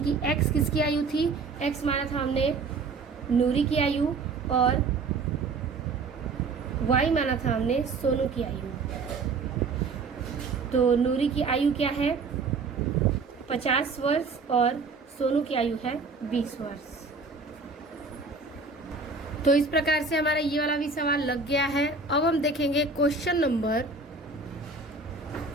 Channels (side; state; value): left; quieter; 4.2 dB